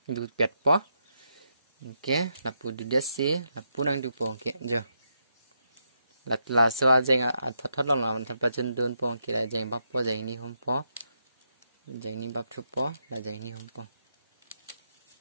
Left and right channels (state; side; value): inverted; both; correlation -0.81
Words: du pet po okay là pu du desi là pu nang du po okay jo là so jeng a thot long la man thap chen don po ke là jeng bap po jeng ni hom po jeng ni bap thu po là jeng ni hom po